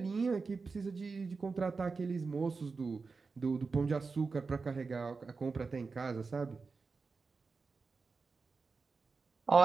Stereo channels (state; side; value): quieter; left; 4.5 dB